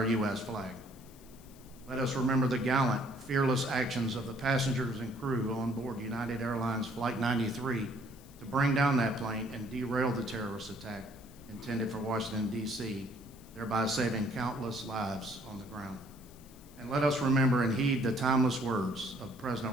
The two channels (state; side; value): noise; left; hiss, 24 dB below the sound